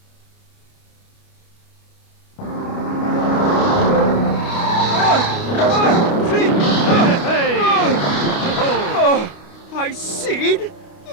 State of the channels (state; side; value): late; right; 29 ms